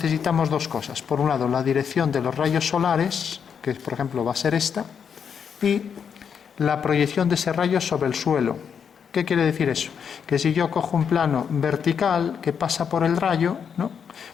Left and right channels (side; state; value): right; quieter; 7.2 dB